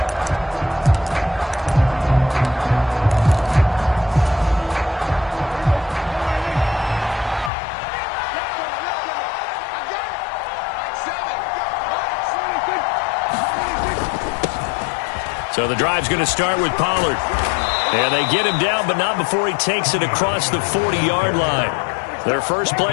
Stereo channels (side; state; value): right; drops out; at 7.5 s